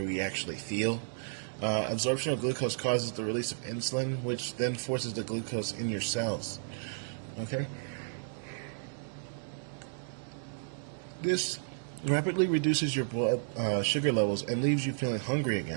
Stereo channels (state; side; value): silent; left; digital silence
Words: we actually feel. Absorption of glucose causes the release of insulin, which then forces the glucose in your cells. Okay? This rapidly reduces your blood sugar levels and leaves you feeling hungry